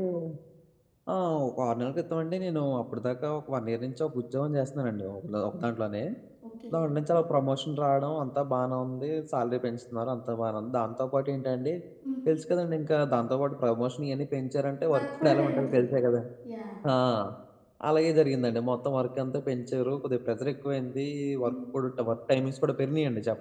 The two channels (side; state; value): both; identical; correlation 1.00